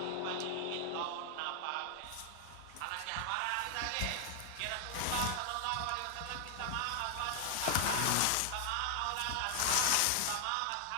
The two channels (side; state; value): both; different; correlation 0.00